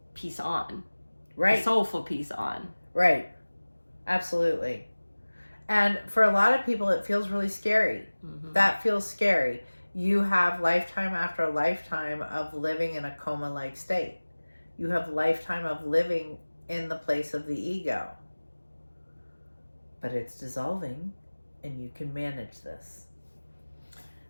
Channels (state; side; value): inverted; both; correlation -1.00